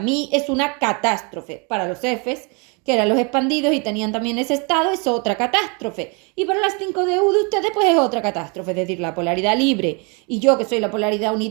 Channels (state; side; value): quieter; left; 32.9 dB